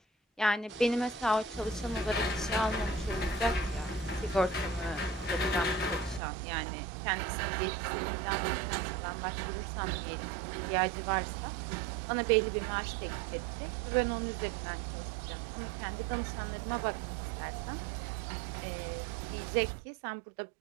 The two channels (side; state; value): left; drops out; at 6.2 s